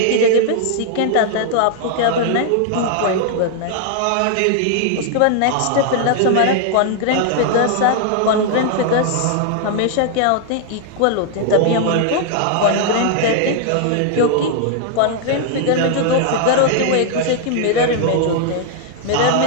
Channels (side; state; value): both; different; correlation -0.01